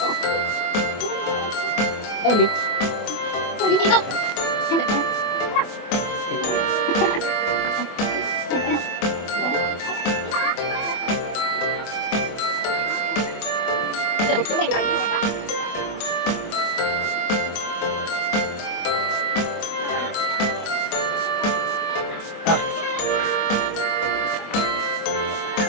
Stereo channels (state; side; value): late; right; 24 ms